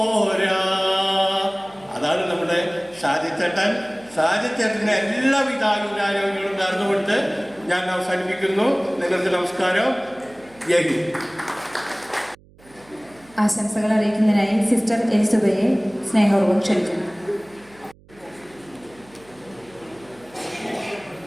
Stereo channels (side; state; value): right; noise; hum, 27 dB below the sound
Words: അതാണ് നമ്മുടെ ഷാജിച്ചേട്ടൻ. ഷാജിച്ചേട്ടൻ്റെ എല്ലാവിധ ആയുരാരോഗ്യങ്ങളും നേർന്നുകൊണ്ട് ഞാൻ അവസാനിപ്പിക്കുന്നു. നിങ്ങൾക്ക് നമസ്കാരം. ജയ് ഹിന്ദ്. ആശംസകൾ അറിയിക്കുന്നതിനായി സിസ്റ്റർ എലിസബയെ സ്നേഹപൂർവ്വം ക്ഷണിക്കുന്നു.